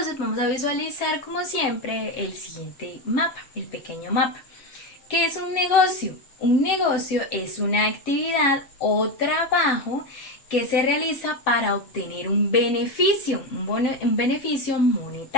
vamos a visualizar como siempre el siguiente mapa, el pequeño mapa. ¿Qué es un negocio? Un negocio es una actividad o trabajo que se realiza para obtener un beneficio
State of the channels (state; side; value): late; right; 7.4 ms